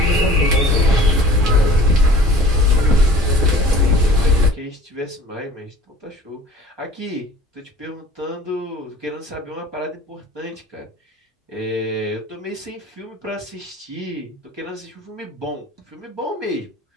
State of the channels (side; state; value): both; normal; correlation 0.47